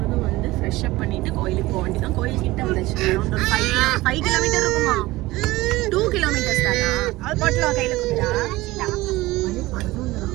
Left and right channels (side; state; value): left; quieter; 19.1 dB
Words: வந்து ஃப்ரெஷ்ஷப் பண்ணிவிட்டு கோயிலுக்கு போக வேண்டியதான். கோயில்கிட்ட வந்துச்சு. அரௌண்ட் ஒரு 5 கிலோமீட்டர் இருக்குமா? 2 கிலோமீட்டர்ஸ் தானா? அது பாட்டில் கையில் கொடுத்தா